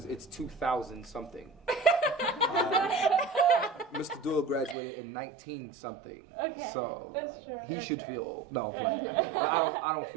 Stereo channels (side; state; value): left; drops out; at 4.8 s